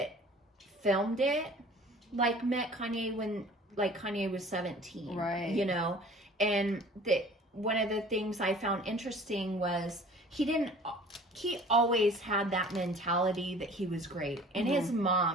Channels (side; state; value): both; normal; correlation 0.47